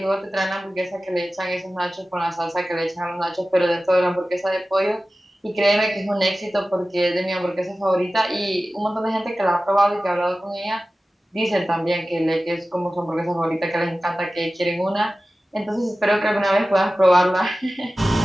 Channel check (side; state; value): both; normal; correlation 0.96